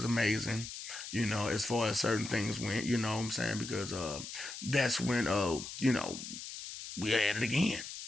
amazing. As far as certain things went, you know what I'm saying, because that's when we had it again.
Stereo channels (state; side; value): noise; left; hiss, 9 dB below the sound